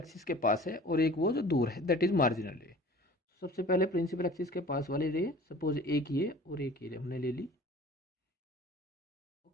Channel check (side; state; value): both; normal; correlation 0.45